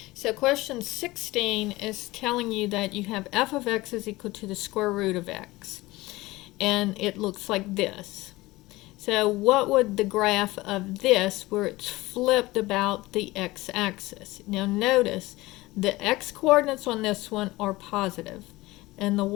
So question 16 is telling you that you have f of x is equal to the square root of x. And it looks like this. So what would the graph of this, where it's flipped about the x-axis? Now notice, the x-coordinates on this one are positive, and the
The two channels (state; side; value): quieter; right; 19.8 dB